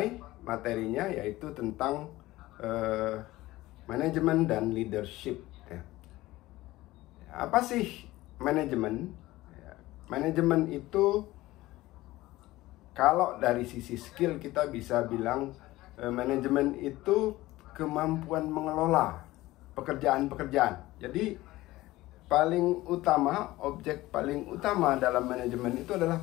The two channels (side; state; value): right; quieter; 17.8 dB